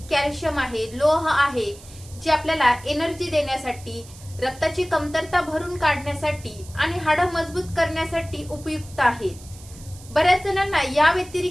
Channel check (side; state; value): right; noise; hiss, 20 dB below the sound